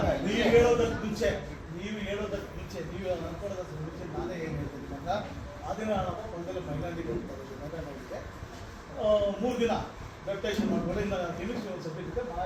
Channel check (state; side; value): identical; both; correlation 1.00